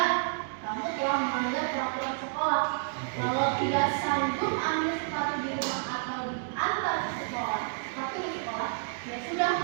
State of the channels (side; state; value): left; silent; digital silence